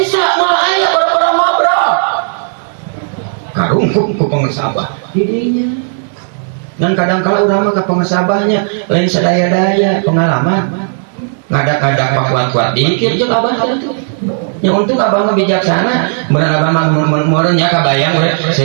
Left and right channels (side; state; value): left; silent; digital silence